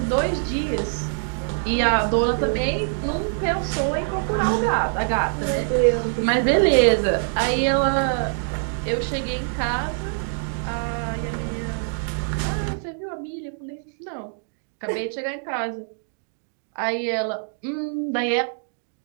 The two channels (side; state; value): left; silent; digital silence